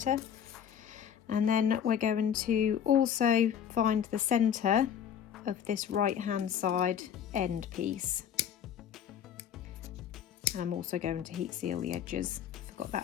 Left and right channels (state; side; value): quieter; right; 8.8 dB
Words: And then we're going to also find the centre of this right hand side end piece. And I'm also going to heat seal the edges. Forgot